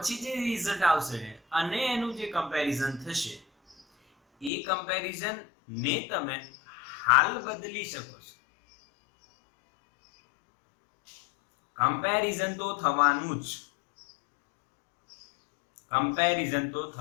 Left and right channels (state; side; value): drops out; right; at 4.5 s